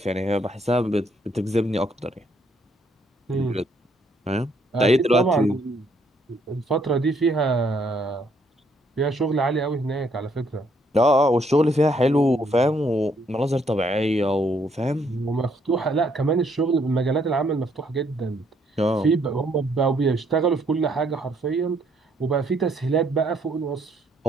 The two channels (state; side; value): normal; both; correlation 0.69